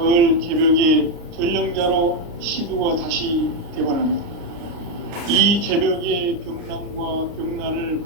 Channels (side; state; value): left; late; 29 ms